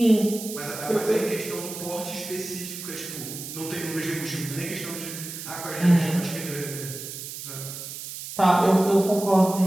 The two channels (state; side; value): noise; right; hiss, 9 dB below the sound